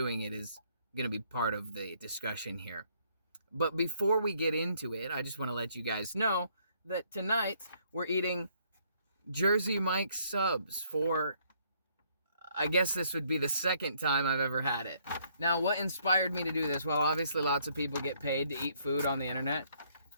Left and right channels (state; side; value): inverted; both; correlation -0.67